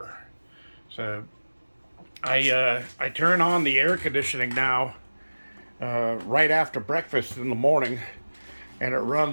So I turn on the air conditioning now right after breakfast in the morning, and it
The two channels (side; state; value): both; inverted; correlation -1.00